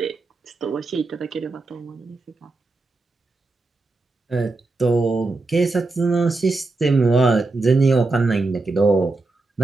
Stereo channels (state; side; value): quieter; left; 3.4 dB